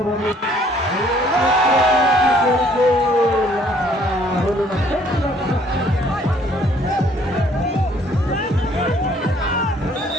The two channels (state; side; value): normal; both; correlation 0.61